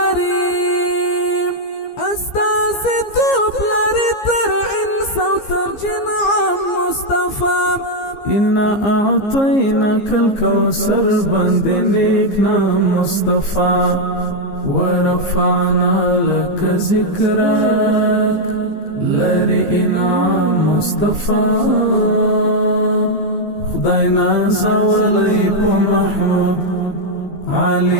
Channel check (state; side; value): late; right; 15 ms